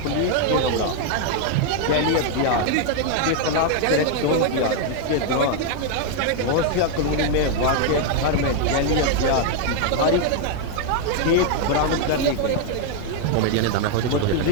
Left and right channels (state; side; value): different; both; correlation 0.00